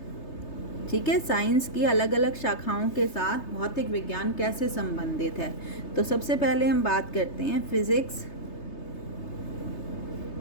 ठीक है। साइंस की अलग अलग शाखाओं के साथ भौतिक विज्ञान कैसे संबंधित है। तो सबसे पहले हम बात करते हैं physics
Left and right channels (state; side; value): late; right; 3.3 ms